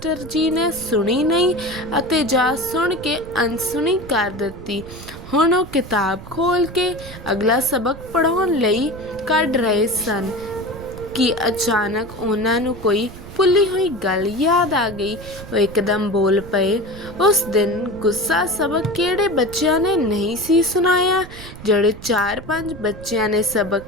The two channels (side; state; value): right; noise; rumble, 15 dB below the sound